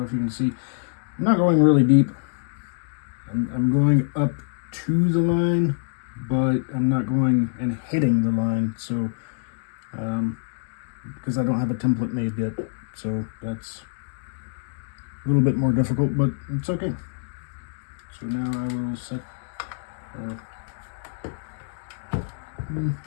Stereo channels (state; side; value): silent; right; digital silence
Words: if you can see, I'm not going really deep. I'm going up to the line, but I'm not going and hitting the line. So, because I don't have a template made yet, so that's a little bit more difficult, but it's okay. So now I will set.